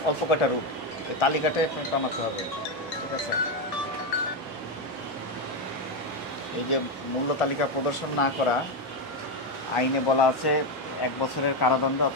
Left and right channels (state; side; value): normal; both; correlation 0.09